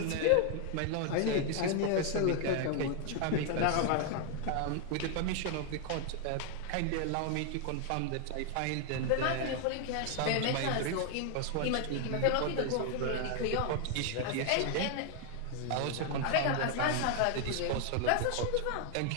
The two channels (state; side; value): different; both; correlation 0.00